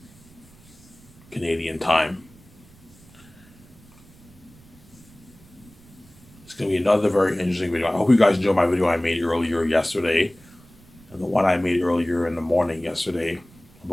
Canadian time. It's going to be another very interesting video. I hope you guys enjoyed my video I made earlier yesterday and the one I made earlier in the morning yesterday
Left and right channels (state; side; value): noise; right; rumble, 25 dB below the sound